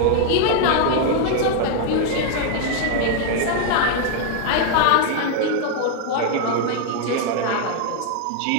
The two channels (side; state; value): both; different; correlation 0.00